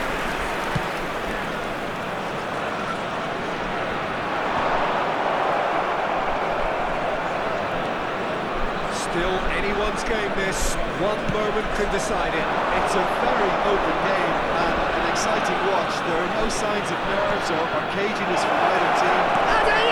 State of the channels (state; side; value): identical; both; correlation 1.00